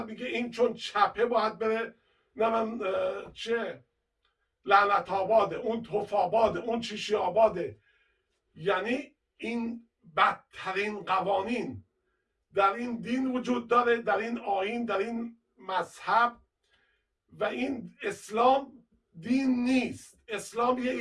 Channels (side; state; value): both; identical; correlation 1.00